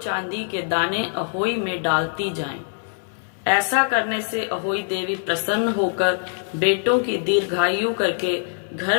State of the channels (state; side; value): silent; right; digital silence